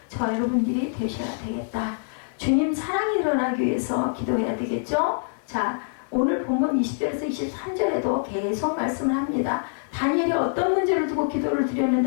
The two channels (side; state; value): right; silent; digital silence